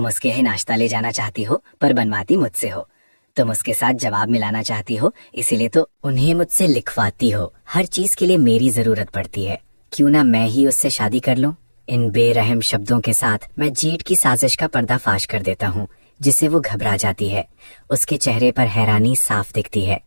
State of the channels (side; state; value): both; inverted; correlation -1.00